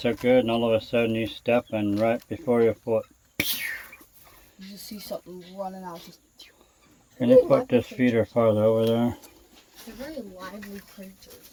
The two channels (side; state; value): both; identical; correlation 1.00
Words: so good, and all of a sudden you step and right before your foot. You just see something running out. Just Can you put this feeder farther over there? They're very lively creatures.